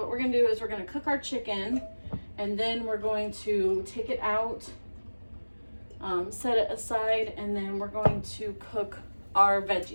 we're going to do is we're going to cook our chicken and then we're going to take it out, set it aside, and then we're going to cook our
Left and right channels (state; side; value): inverted; both; correlation -1.00